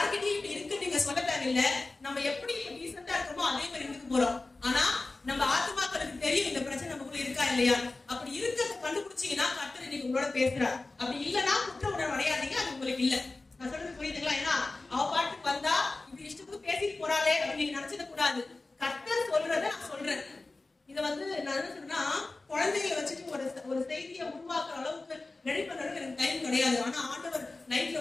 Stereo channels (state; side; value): quieter; right; 3.3 dB